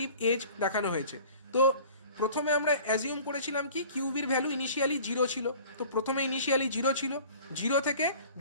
এজ দেখানো হয়েছে। তো প্রথমে আমরা অ্যাজিউম করেছিলাম কি কিউবির ভ্যালু ইনিশিয়ালি 0 ছিল, তো প্রথমে ইনিশিয়ালি 0 ছিল, 0 থেকে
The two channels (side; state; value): both; inverted; correlation -0.46